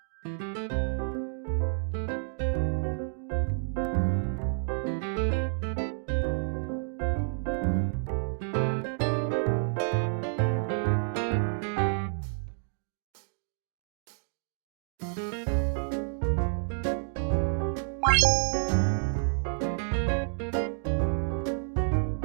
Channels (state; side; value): silent; left; digital silence